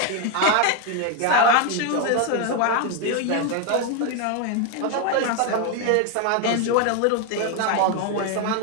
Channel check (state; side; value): different; both; correlation 0.01